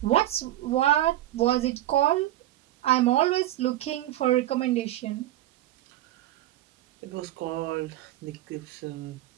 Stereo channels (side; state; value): left; quieter; 14.1 dB